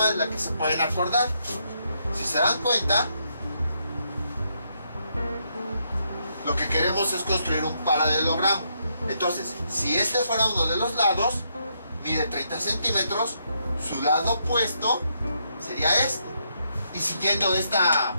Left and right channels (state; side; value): inverted; both; correlation -0.77